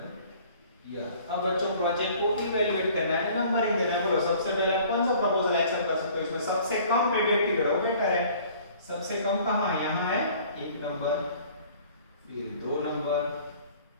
ईयर। अब बच्चों प्रोजेक्ट को इवैल्यूएट करना है, नंबरिंग देना है। बोलो सबसे पहले आप कौन सा प्रपोजल एक्शन कर सकते हो? इसमें सबसे कम पेबैक पीरियड हो, बेटर है। सबसे कम कहां है? यहां है 1 नंबर, फिर 2 नंबर,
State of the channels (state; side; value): inverted; both; correlation -0.52